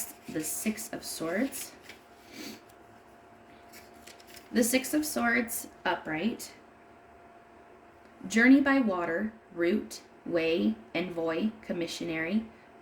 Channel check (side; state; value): both; identical; correlation 1.00